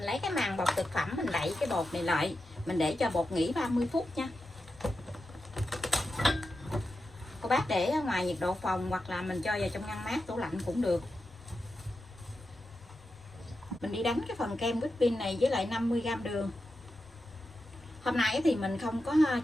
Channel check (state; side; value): normal; both; correlation 0.90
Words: lấy cái màng bọc thực phẩm mình đậy cái bột này lại, mình để cho bột nghỉ 30 phút nha. Cô bác để ở ngoài nhiệt độ phòng hoặc là mình cho vào trong ngăn mát tủ lạnh cũng được. Mình đi đánh cái phần kem whipping này với lại 50g đường. Hôm nay thì mình không có